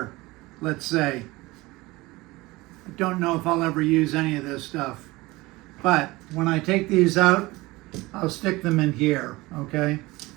let's say. I don't know if I'll ever use any of this stuff, but when I take these out, I'll stick them in here, okay?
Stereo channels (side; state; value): left; quieter; 21.0 dB